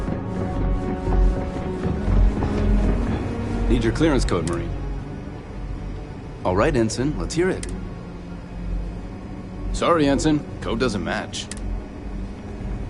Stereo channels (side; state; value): both; identical; correlation 1.00